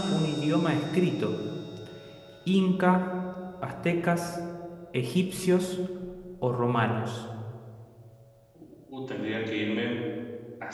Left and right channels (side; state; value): both; identical; correlation 1.00